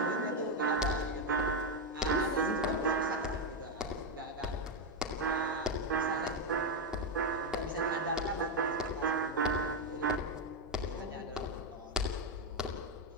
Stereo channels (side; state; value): both; normal; correlation 0.04